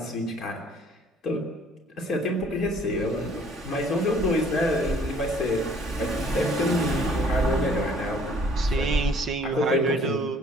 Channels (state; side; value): normal; both; correlation 0.57